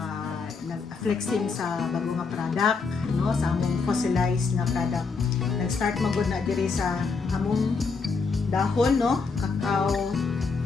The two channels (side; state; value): right; quieter; 4.8 dB